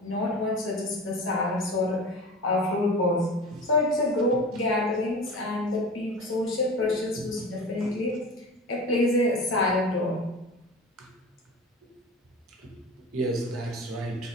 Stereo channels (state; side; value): normal; both; correlation 0.34